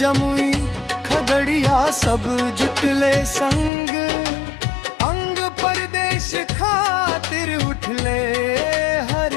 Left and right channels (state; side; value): drops out; right; at 3.7 s